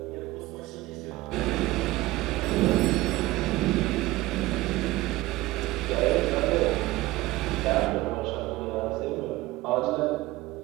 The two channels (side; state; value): left; quieter; 18.3 dB